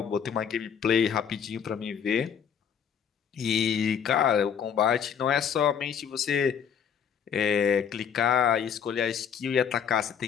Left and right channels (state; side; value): quieter; right; 7.7 dB